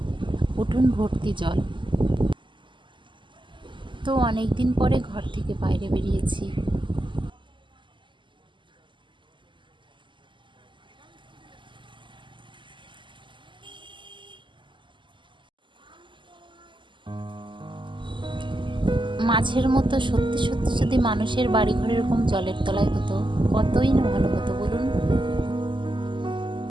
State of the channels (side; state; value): left; late; 0.24 ms